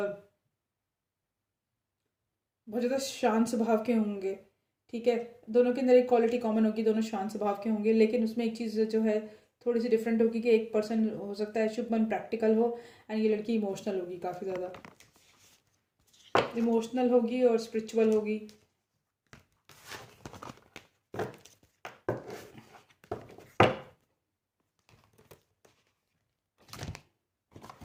बहुत ज़्यादा शांत स्वभाव के होंगे, ठीक है। दोनों के अंदर एक क्वालिटी कॉमन होगी, दोनों शांत स्वभाव के होंगे, लेकिन उसमें एक चीज़ जो है थोड़ी सी डिफरेंट होगी कि एक पर्सन हो सकता है शुभमन प्रैक्टिकल हो एंड ये लड़की इमोशनल होगी, काफ़ी ज़्यादा इमोशनल होगी और स्पिरिचुअल होगी।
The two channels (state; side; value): identical; both; correlation 1.00